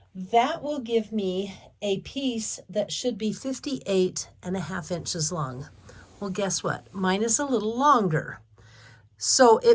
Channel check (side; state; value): both; identical; correlation 1.00